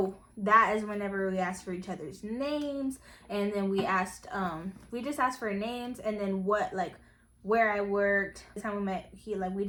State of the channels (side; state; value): both; identical; correlation 1.00